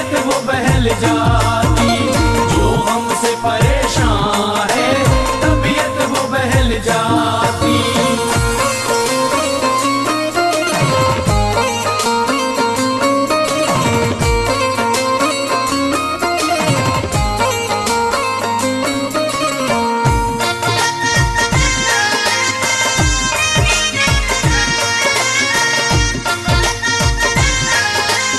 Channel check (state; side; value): identical; both; correlation 1.00